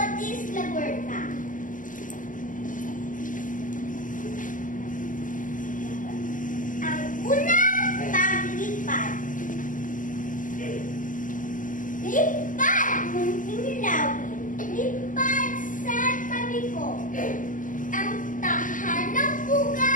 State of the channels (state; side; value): late; right; 0.38 ms